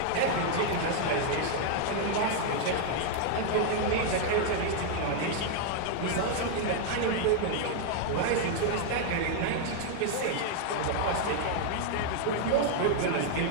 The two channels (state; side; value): different; both; correlation 0.00